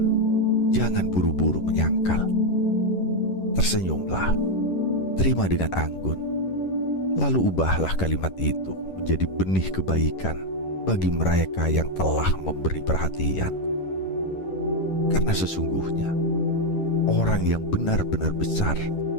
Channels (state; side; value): late; right; 11 ms